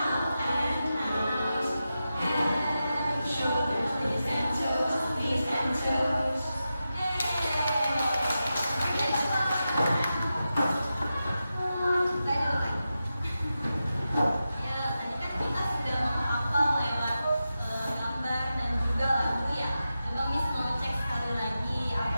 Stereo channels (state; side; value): inverted; both; correlation -0.91